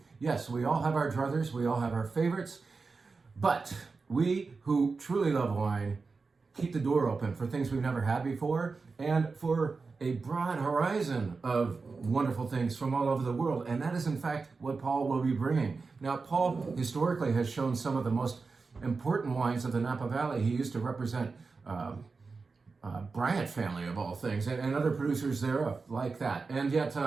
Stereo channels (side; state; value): left; quieter; 4.4 dB